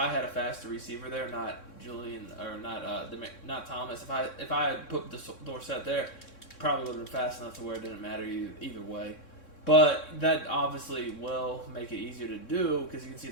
had a faster receiver there, not Julian or not Thomas, if I had put the Dorsett there, probably would have been fast enough to where it didn't matter either way. But that obviously will make it easier to do because you can see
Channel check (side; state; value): right; late; 3.6 ms